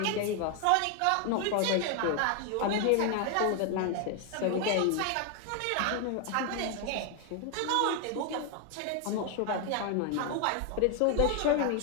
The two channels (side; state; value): both; different; correlation 0.01